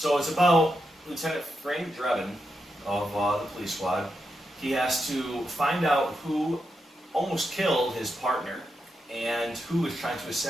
it's about Lieutenant Frank Drebin of the police squad. He has to find out who almost killed his partner and who is trying to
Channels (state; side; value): normal; both; correlation 0.86